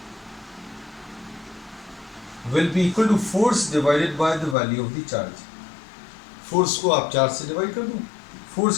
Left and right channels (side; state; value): right; drops out; at 4.5 s